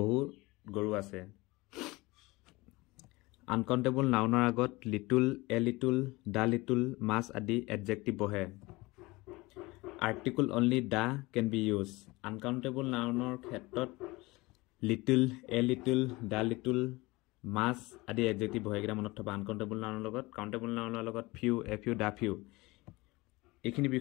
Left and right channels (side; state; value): right; quieter; 22.1 dB